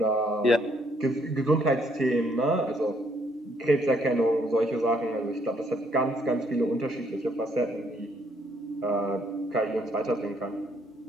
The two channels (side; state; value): both; normal; correlation 0.69